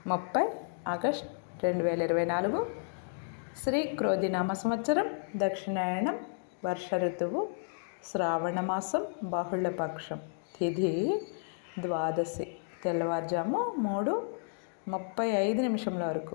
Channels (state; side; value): silent; right; digital silence